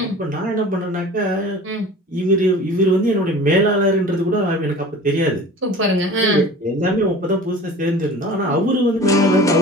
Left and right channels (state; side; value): normal; both; correlation 0.41